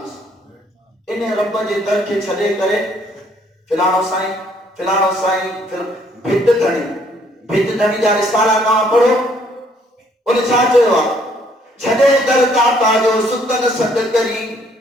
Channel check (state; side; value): normal; both; correlation 0.65